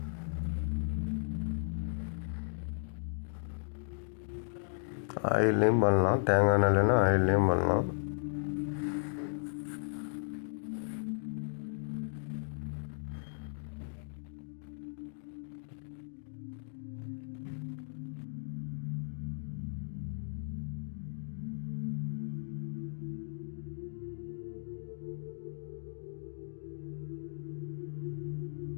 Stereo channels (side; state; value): right; silent; digital silence